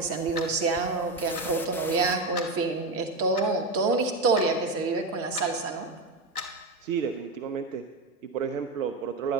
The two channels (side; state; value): left; quieter; 3.1 dB